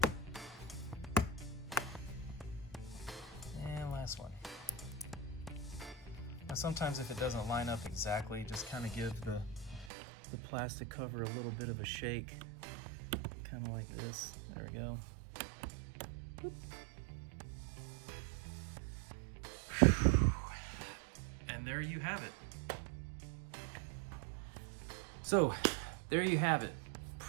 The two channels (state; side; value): drops out; left; at 9.9 s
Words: Last one. Now sometimes if it doesn't line up exactly, just kind of give the plastic cover a little bit of a shake, kind of like this. There we go. And there you have it. So there you have it.